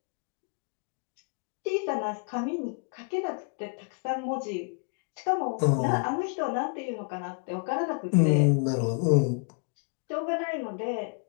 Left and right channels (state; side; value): quieter; right; 39.3 dB